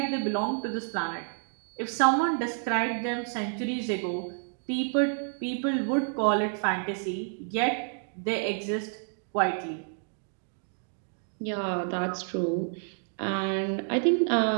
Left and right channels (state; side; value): silent; left; 58 dB below the other